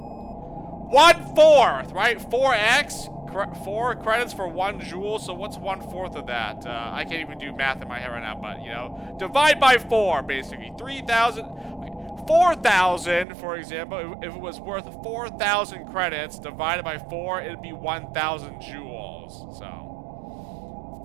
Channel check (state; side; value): drops out; left; at 13.2 s